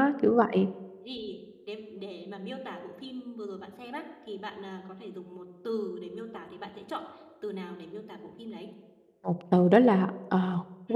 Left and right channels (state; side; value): identical; both; correlation 1.00